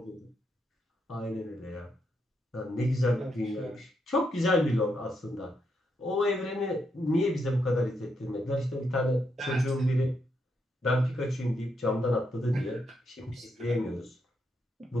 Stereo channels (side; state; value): both; normal; correlation 0.80